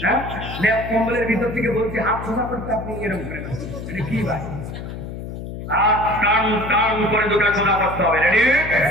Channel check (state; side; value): noise; left; hum, 9 dB below the sound